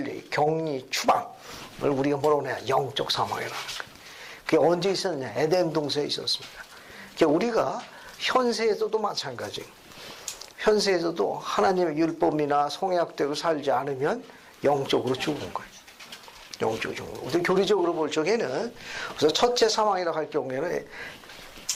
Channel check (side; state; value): both; identical; correlation 1.00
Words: 격리, 추방을 우리가 뭐라고 해야 영적 사망이라는 거예요. 그게 언제 있었냐? 에덴 동산에 있었습니다. 그러니까 우리가 현세에서도 마찬가지예요. 현세에서도 하나님의 율법이나 성약대로 살지 않으면 영적으로 죽은 거예요. 영적으로 죽은 거예요. 우리 교리적으로 볼 적에는, 그래서 첫째 사망이라고 할 경우에는